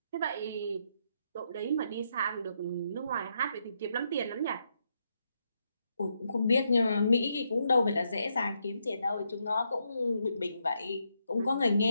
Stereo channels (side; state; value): both; inverted; correlation -0.79